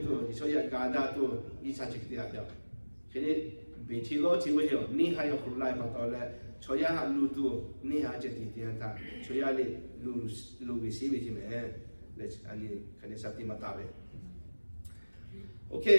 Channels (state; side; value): inverted; both; correlation -1.00